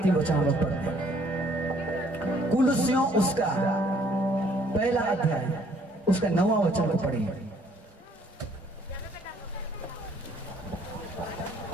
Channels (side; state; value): both; normal; correlation 0.62